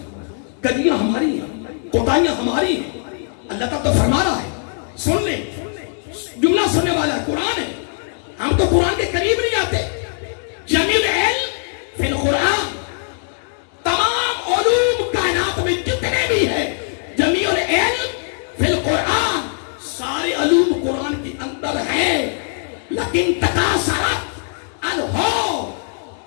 کجیاں ہماری ہیں، کوتاہیاں ہماری ہیں. اللہ تعالیٰ تو فرما رہا ہے، سن لیں، جملہ سننے والا ہے، قرآن ہے. ہم تو قرآن کے قریب نہیں آتے. جمیل علم فی القرآن، تمام علوم کائنات میں جتنے بھی ہیں، جمیل علم فی القرآن، سارے علوم قرآن کے اندر ہیں. لیکن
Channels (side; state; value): right; silent; 66 dB below the other